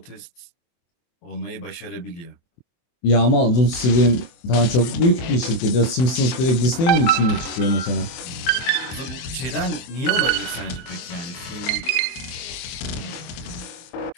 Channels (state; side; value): late; right; 24 ms